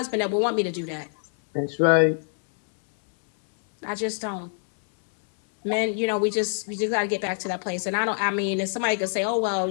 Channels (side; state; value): right; silent; 62 dB below the other